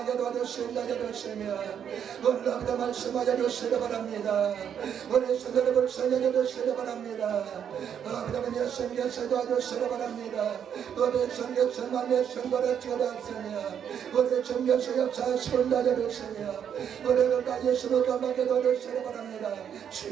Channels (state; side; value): quieter; left; 8.5 dB